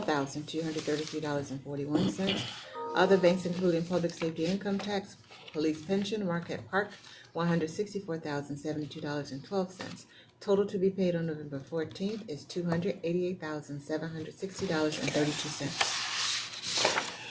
Other banks including public safety income tax, police pension, Marquette Park, $164,072.12. Total to be paid on November 14th is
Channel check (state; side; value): identical; both; correlation 1.00